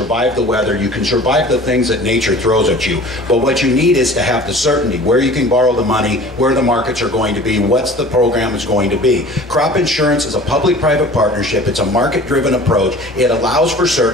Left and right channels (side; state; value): both; normal; correlation 0.44